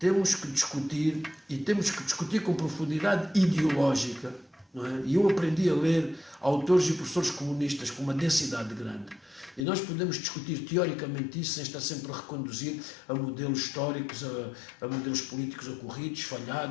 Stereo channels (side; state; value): right; drops out; at 9.7 s